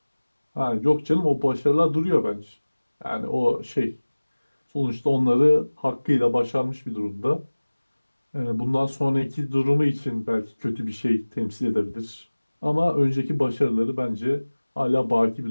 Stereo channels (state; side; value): inverted; both; correlation -1.00